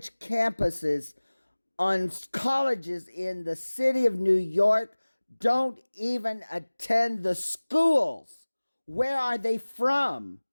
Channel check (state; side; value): inverted; both; correlation -1.00